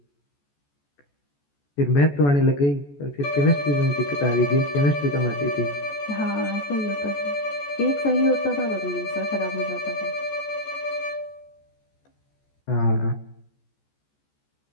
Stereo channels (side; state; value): right; late; 14 ms